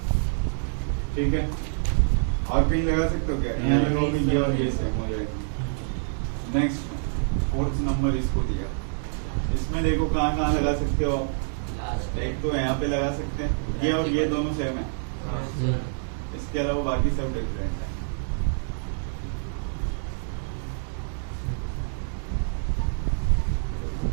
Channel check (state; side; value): silent; left; digital silence